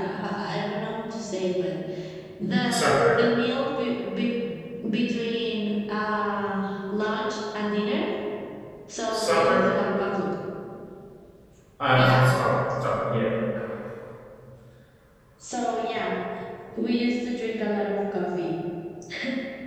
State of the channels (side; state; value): both; identical; correlation 1.00